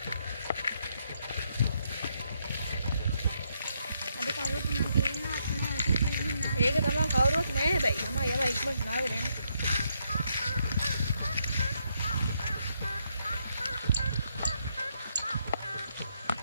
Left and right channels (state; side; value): inverted; both; correlation -0.77